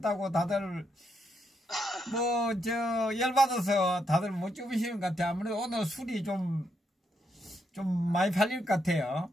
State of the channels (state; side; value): normal; both; correlation 0.79